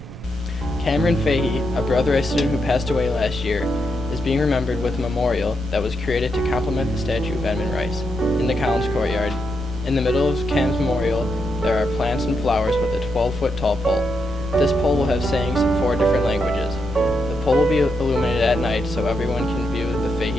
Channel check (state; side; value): noise; right; rumble, 14 dB below the sound